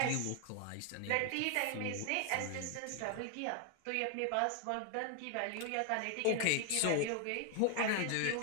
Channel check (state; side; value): different; both; correlation 0.00